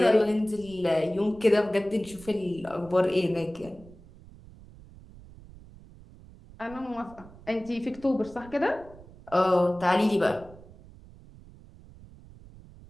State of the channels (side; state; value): right; noise; rumble, 21 dB below the sound